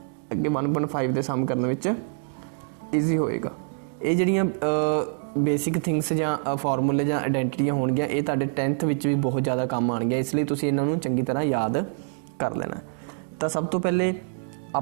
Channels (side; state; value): left; silent; digital silence